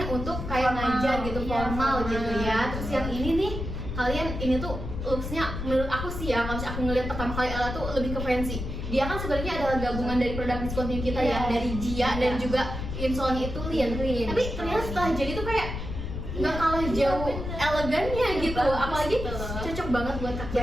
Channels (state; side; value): noise; left; rumble, 6 dB below the sound